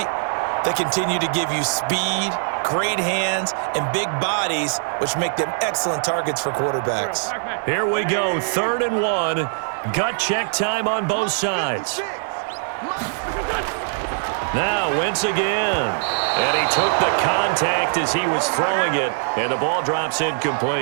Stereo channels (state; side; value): silent; left; 59 dB below the other